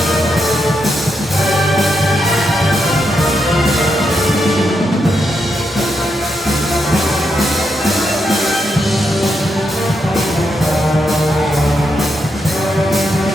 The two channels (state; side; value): normal; both; correlation 0.82